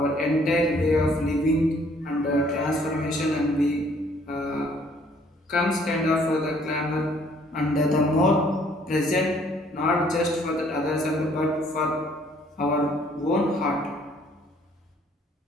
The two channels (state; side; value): normal; both; correlation 0.62